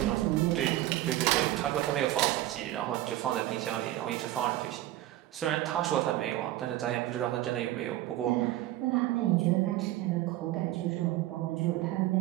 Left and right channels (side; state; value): left; quieter; 15.1 dB